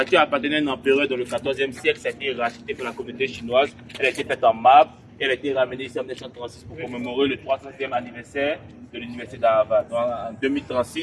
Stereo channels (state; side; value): identical; both; correlation 1.00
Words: appartenait à un empereur dans le 14e siècle, ça a été racheté par la communauté chinoise. Elle a été faite en marbre et elle a été ramenée ici en 1936 pour commémorer le 300e anniversaire de l'université d'Harvard. Donc en